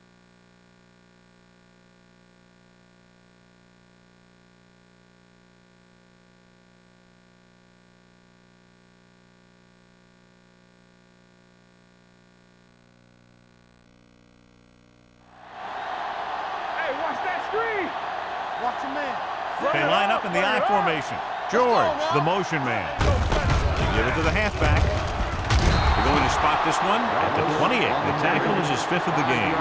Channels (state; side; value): identical; both; correlation 1.00